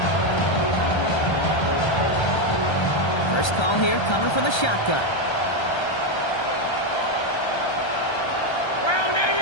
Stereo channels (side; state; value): right; late; 1.3 ms